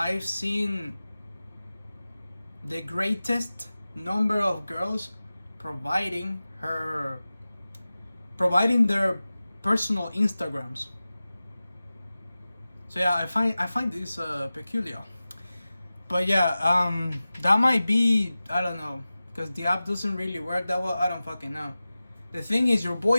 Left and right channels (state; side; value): inverted; both; correlation -0.96